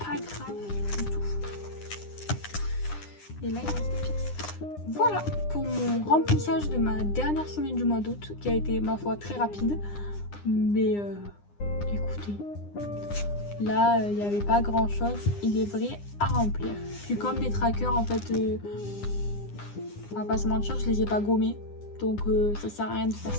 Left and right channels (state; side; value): late; right; 9.8 ms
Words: grave du tout. Et là, il reste des pièces. Voilà pour mon remplissage de ma dernière semaine du mois d'août, qui a été, ma foi, très rapide. Mais écoutez, là, il n'y avait pas grand chose, il est vrai, à remplir. Puis comme mes trackers, en fait, on va pas se mentir, je les ai pas gommés. Donc ça sert à rien de faire